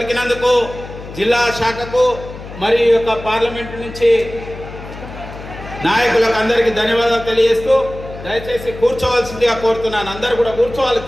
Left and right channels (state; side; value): noise; left; hum, 13 dB below the sound